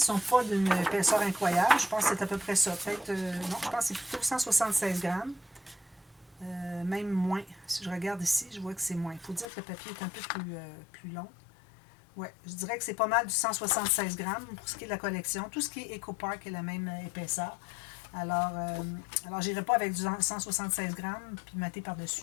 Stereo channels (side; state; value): right; drops out; at 9.5 s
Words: sont pas d'une épaisseur incroyable. Je pense que c'est à peu près ça. Peut-être, non, je pense que c'est plutôt 176 grammes. Même moins. Si je regarde ici, je vois que c'est moins. Il faut dire que le papier est un peu plus long. Ouais, je dirais que c'est pas mal du 176 grammes pour ce qui est de la collection. Tout ce qui est EcoPark est la même épaisseur. Alors je n'irai pas avec du 176 grammes puis mater